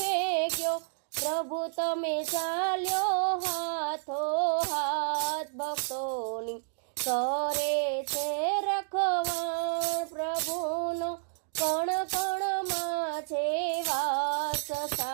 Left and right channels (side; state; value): left; silent; digital silence